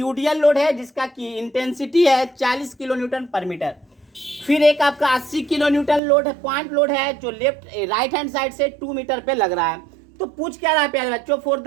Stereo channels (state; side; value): drops out; left; at 6.0 s